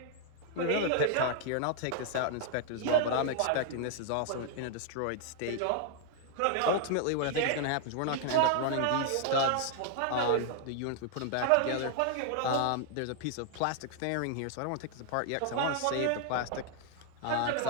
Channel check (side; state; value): both; different; correlation 0.00